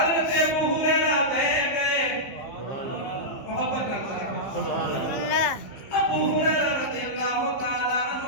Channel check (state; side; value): late; right; 15 ms